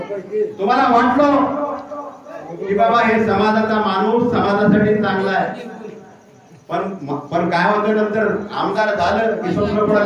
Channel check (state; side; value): identical; both; correlation 1.00